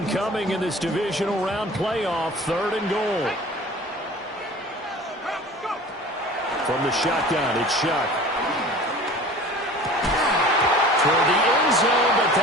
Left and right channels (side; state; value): both; normal; correlation 0.42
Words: coming in this divisional round playoff, 3rd and goal. From the shotgun, it's Shuck. Toward the end zone, but